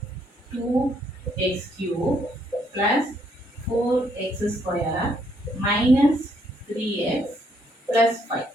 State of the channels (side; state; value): both; normal; correlation 0.71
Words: 2x cube plus 4x square minus 3x plus 5.